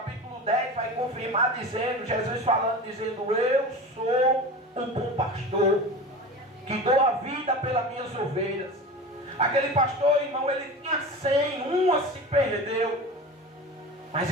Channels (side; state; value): both; normal; correlation 0.31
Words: 10, vai confirmar dizendo, Jesus falando, dizendo: eu sou o bom pastor, que dou a vida pelas minhas ovelhas. Aquele pastor, irmão, ele tinha 100, uma se perdeu. Mas